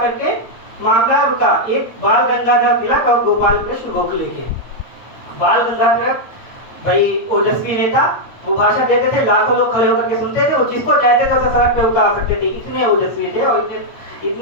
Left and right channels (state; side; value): late; right; 8.7 ms